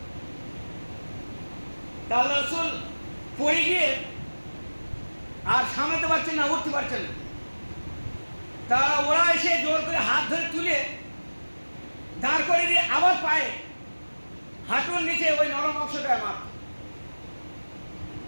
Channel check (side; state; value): both; inverted; correlation -1.00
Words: আল্লাহ রাসূল পড়ে গিয়ে আর সামলাতে পারছেন না, উঠতে পারছেন না। তারা ওরা এসে জোর করে হাত ধরে তুলে দাঁড় করে দিয়ে আবার পায়ে হাঁটুর নিচে ওই নরম অংশটায় মার,